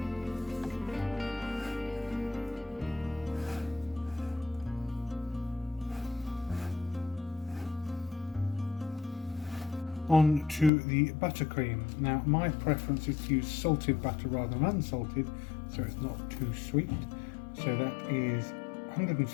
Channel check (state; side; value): drops out; right; at 10.7 s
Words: On to the buttercream. Now my preference is to use salted butter rather than unsalted, so it's not too sweet. So that is